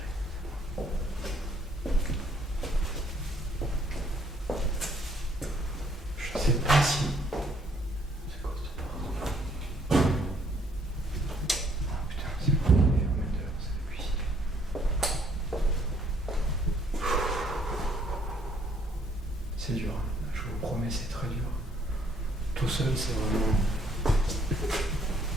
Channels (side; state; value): both; normal; correlation 0.65